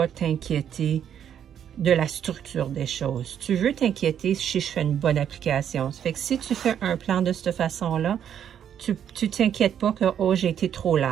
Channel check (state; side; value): quieter; left; 9.2 dB